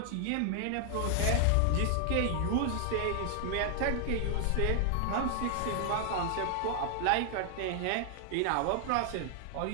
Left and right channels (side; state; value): both; different; correlation 0.00